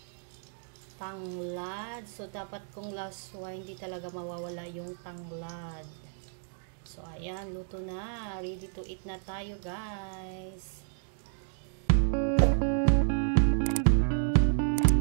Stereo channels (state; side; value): silent; left; digital silence